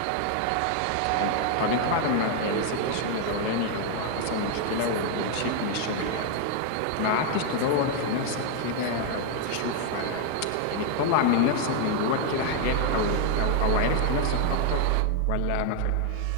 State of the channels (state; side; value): different; both; correlation 0.00